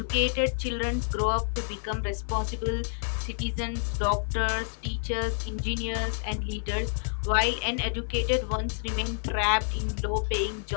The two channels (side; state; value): right; silent; 59 dB below the other